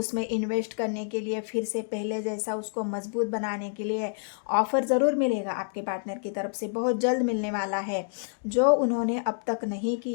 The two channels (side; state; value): right; silent; digital silence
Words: इन्वेस्ट करने के लिए, फिर से पहले जैसा उसको मजबूत बनाने के लिए ऑफर ज़रूर मिलेगा आपके पार्टनर की तरफ से, बहुत जल्द मिलने वाला है। जो उन्होंने अब तक नहीं